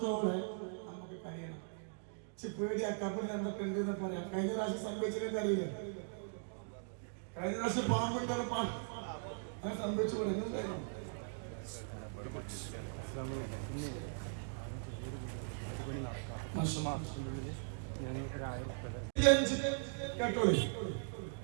നമുക്ക് കഴിയണം. പേടി ആ ഖബറിൽ എന്തൊക്കെ ഉണ്ടെന്ന് പറയാം. കഴിഞ്ഞ പ്രാവശ്യം സംഭവിച്ചതൊക്കെ അറിയില്ല. കഴിഞ്ഞ പ്രാവശ്യം പാമ്പുണ്ടെന്ന് അങ്ങനെ സംഭവിച്ചു പറയുന്നുണ്ടായിരുന്നു. കേട്ടോളൂ.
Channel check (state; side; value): silent; left; digital silence